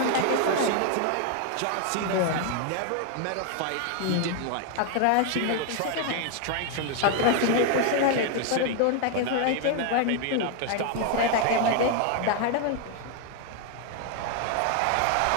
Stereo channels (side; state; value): both; different; correlation 0.01